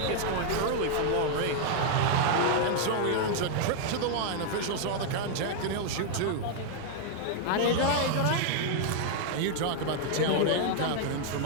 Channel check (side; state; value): both; different; correlation 0.00